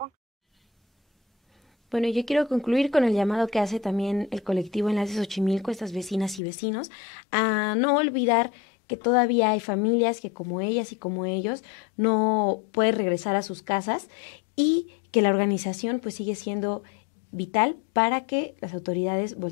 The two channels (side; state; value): right; drops out; at 6.4 s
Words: Bueno, yo quiero concluir con el llamado que hace también el colectivo Enlace Xochimilco, estas vecinas y vecinos, a no olvidar que todavía hay familias que como ellas y como ellos no pueden regresar a sus casas y que la organización pues sigue siendo vital para que las autoridades